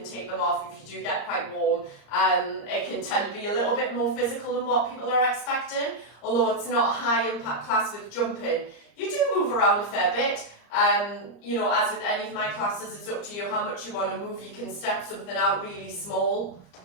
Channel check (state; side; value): late; right; 34 ms